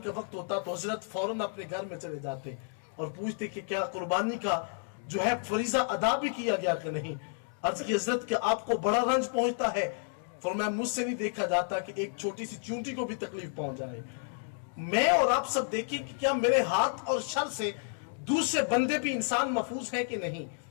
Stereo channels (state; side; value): silent; right; digital silence